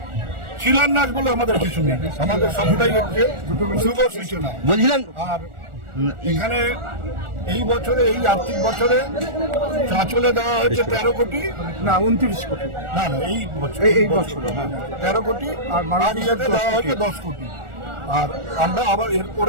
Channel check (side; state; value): left; late; 1.4 ms